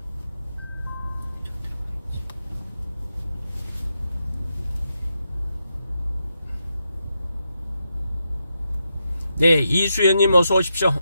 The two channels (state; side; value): inverted; both; correlation -0.85